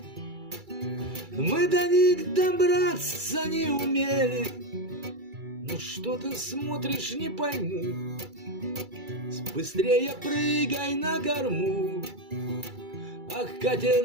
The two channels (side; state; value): left; late; 2.3 ms